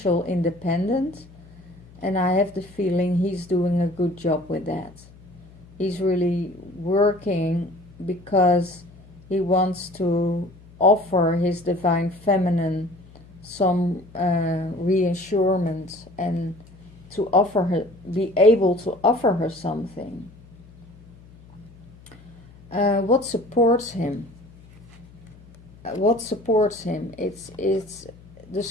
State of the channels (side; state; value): left; noise; hum, 23 dB below the sound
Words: independent, and I have the feeling he's doing a good job with that. He's really working because he wants to offer his divine feminine some reassurance, and to offer her, be able to offer her something. What supports him? What supports him? It's the